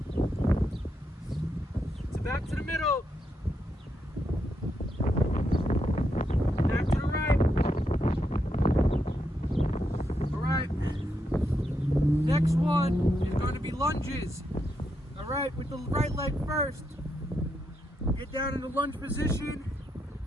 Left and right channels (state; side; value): normal; both; correlation 0.81